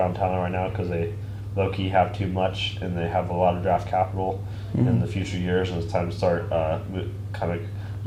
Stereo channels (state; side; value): identical; both; correlation 1.00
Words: talent right now because they low-key have too much, and they have a lot of draft capital in the future years, and it's time to start kind of